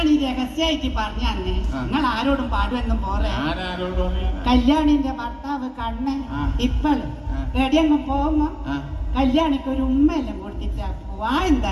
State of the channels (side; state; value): both; identical; correlation 1.00